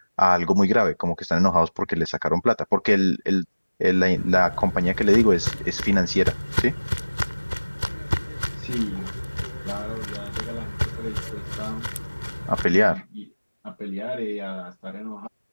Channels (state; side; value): inverted; both; correlation -1.00